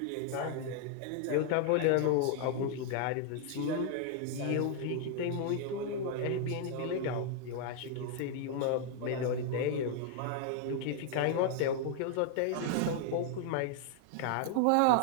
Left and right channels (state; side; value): different; both; correlation 0.00